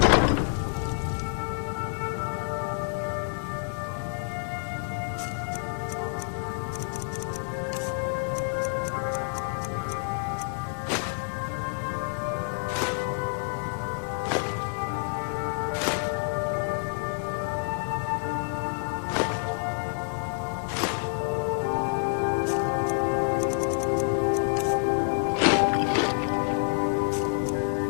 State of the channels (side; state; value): right; silent; 59 dB below the other